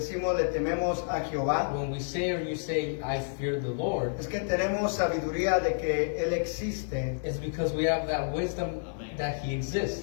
le tememos a Jehová, When we say or you say I fear the Lord, es que tenemos sabiduría de que Él existe it's because we have that wisdom that he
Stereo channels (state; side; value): silent; right; 58 dB below the other